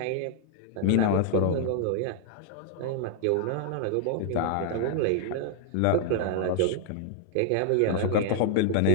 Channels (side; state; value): both; different; correlation 0.00